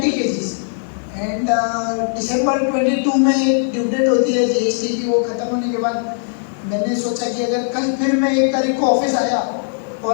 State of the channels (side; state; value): right; silent; digital silence